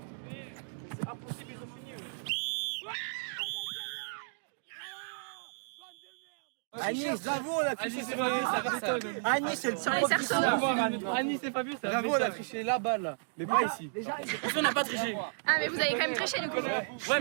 Anis, bravo, on a triché, c'est pas vu, ça. Anis, c'est le Sur les cerceaux. Anis, c'est pas vu, ça. Bravo, on a triché là-bas, là. Mais pas ici. On n'a pas triché. Ah, mais vous avez quand même triché du coup. Ouais,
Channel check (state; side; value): silent; left; digital silence